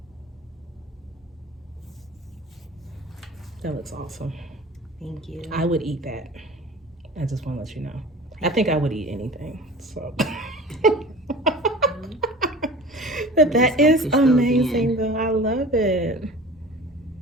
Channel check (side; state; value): both; normal; correlation 0.40